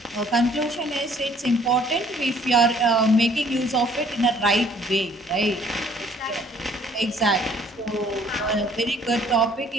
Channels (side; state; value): both; normal; correlation 0.59